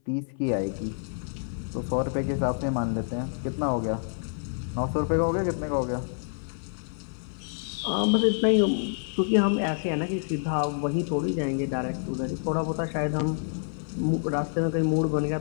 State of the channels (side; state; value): right; silent; 59 dB below the other